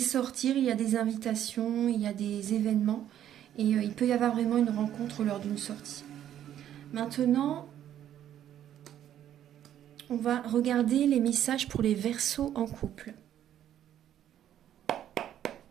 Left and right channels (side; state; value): left; quieter; 11.0 dB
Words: il y a des invitations, il y a des événements, et il peut y avoir vraiment une rencontre lors d'une sortie. Maintenant, on va regarder les messages pour les Verseaux en couple.